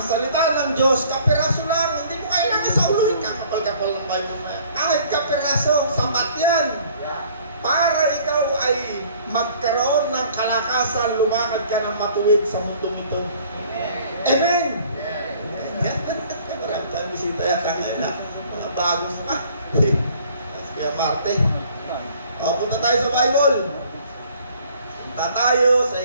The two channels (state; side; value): inverted; both; correlation -0.55